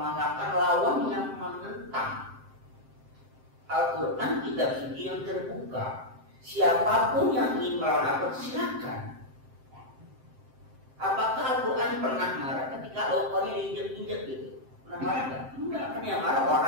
lawan yang menentang. Al-Quran kitab suci yang terbuka. Siapapun yang ingin melawan Al-Quran silakan. Apakah Al-Quran pernah marah ketika Al-Qurannya diinjak-injak gitu? Pernah marah nggak? Enggak, kan yang marah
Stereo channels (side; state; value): left; late; 7.6 ms